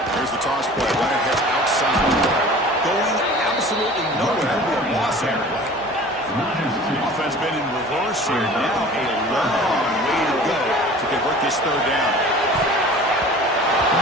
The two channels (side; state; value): both; normal; correlation 0.43